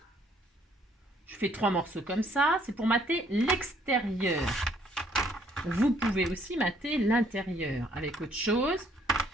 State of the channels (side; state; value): both; normal; correlation 0.64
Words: fais 3 morceaux comme ça, c'est pour mater l'extérieur. Vous pouvez aussi mater l'intérieur avec autre chose.